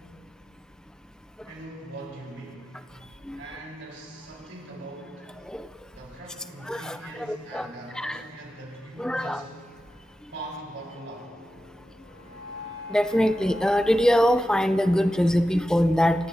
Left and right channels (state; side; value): normal; both; correlation 0.91